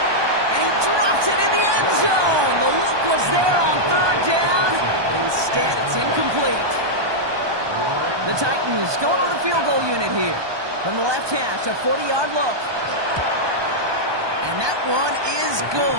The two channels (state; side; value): late; left; 1.2 ms